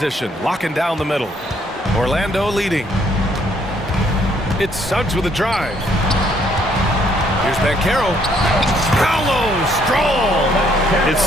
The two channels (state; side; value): normal; both; correlation 0.67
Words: locking down the middle. Orlando leading. It's Suggs with a drive. Here's Banchero. Paolo, strong. It's